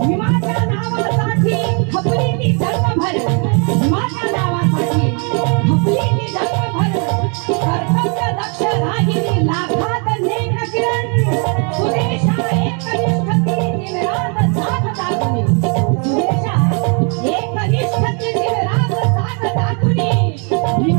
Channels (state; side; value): quieter; left; 36.8 dB